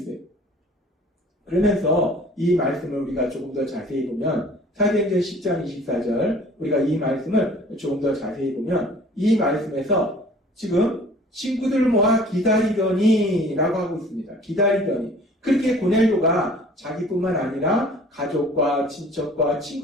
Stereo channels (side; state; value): both; normal; correlation 0.50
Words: 그러면서 이 말씀을 우리가 조금 더 자세히 보면 사도행전 10장 24절 우리가 이 말씀을 조금 더 자세히 보면 이 말씀에서 지금 친구들을 모아 기다리더니 라고 하고 있습니다. 기다리더니 그렇게 고넬료가 자기뿐만 아니라 가족과 친척과